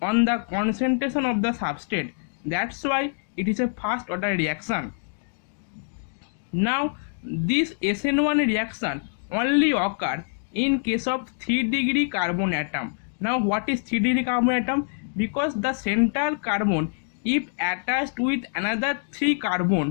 on the concentration of the substrate. That's why it is a first order reaction. Now this SN1 reaction only occur in case of 3-degree carbon atom. Now what is 3-degree carbon atom? Because the central carbon, if attached with another 3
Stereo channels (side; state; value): right; silent; digital silence